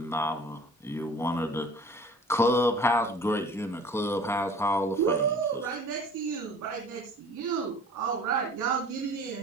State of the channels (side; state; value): both; normal; correlation 0.45